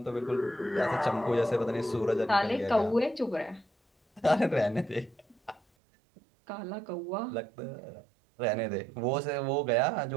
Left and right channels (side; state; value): left; drops out; at 5.6 s